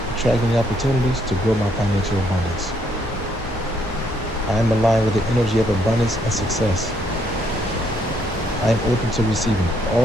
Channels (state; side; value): normal; both; correlation 0.71